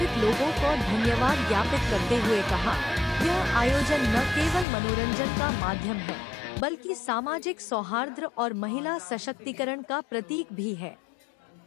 लोगों को धन्यवाद ज्ञापित करते हुए कहा, यह आयोजन न केवल मनोरंजन का माध्यम है बल्कि सामाजिक सौहार्द और महिला सशक्तिकरण का प्रतीक भी है।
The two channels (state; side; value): drops out; right; at 4.7 s